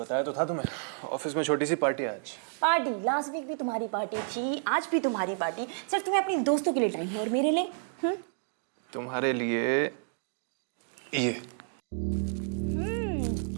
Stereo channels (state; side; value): silent; left; digital silence